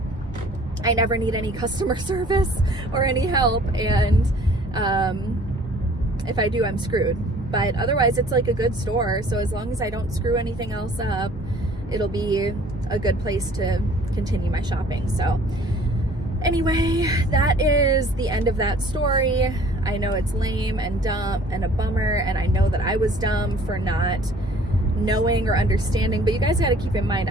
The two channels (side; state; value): both; normal; correlation 0.53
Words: I never need any customer service or any help. And if I do, I'm screwed. but otherwise it's like a good store. So as long as I don't screw anything else up, it'll be a good place to continue my shopping. So anyway, that is the end of that story. I know it's lame and dumb and a bummer, and I know that I was dumb for not knowing or understanding, but you guys got to keep in mind,